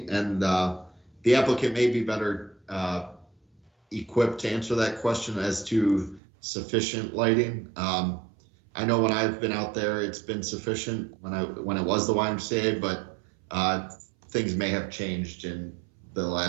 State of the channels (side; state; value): left; drops out; at 6.2 s